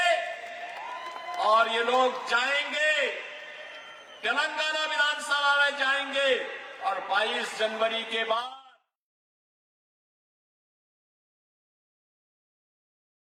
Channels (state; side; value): identical; both; correlation 1.00